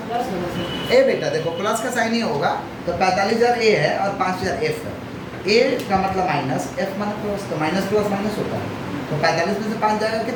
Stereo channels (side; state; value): both; identical; correlation 1.00